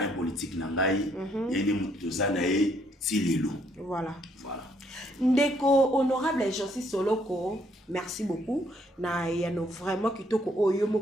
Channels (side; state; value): both; normal; correlation 0.69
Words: politique nangai. Il y a des moutons à nae tilelo. Voilà. Voilà. Ndeko honorable Jansi Soloko, merci beaucoup. Na yano vraiment kitoko oyo